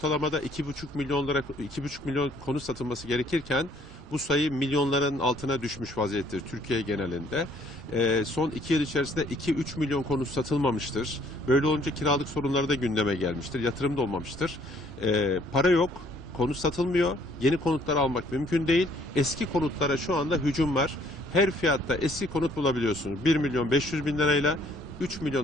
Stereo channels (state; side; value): normal; both; correlation 0.62